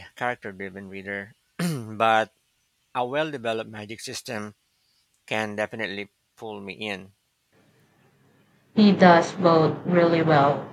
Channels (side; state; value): both; identical; correlation 1.00